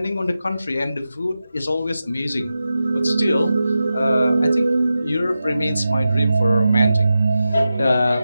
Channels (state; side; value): inverted; both; correlation -0.92